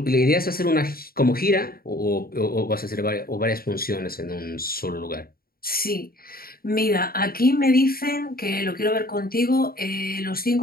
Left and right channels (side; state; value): right; late; 0.43 ms